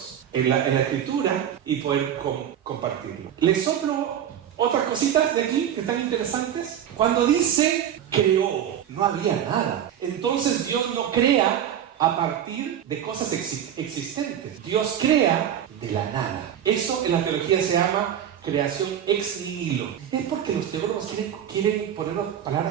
en la Escritura y poder compartirlo. Les soplo otras cositas de aquí que están interesantes. Cuando dice creó, no había nada. Entonces Dios no crea a partir de cosas existentes. Dios crea de la nada. Eso en la teología se llama creación ex nihilo. Es porque los teólogos quieren ponernos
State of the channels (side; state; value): left; quieter; 9.8 dB